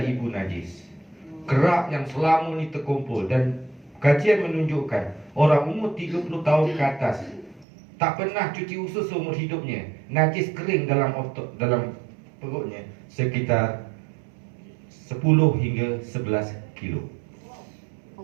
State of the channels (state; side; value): drops out; left; at 7.7 s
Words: najis, kerak yang selama ni terkumpul. Dan kajian menunjukkan orang umur 30 tahun ke atas tak pernah cuci usus seumur hidupnya, najis kering dalam otot, dalam perutnya sekitar 10 hingga 11 kilo.